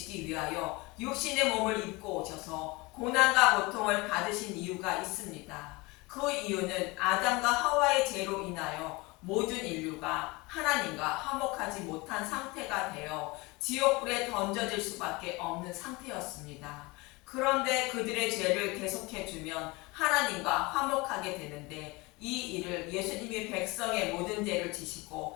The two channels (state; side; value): quieter; right; 24.4 dB